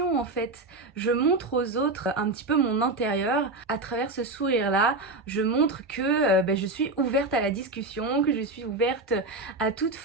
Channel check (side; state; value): left; quieter; 3.1 dB